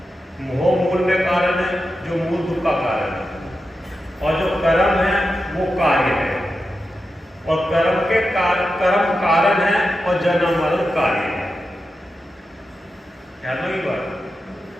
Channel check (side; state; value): both; normal; correlation 0.90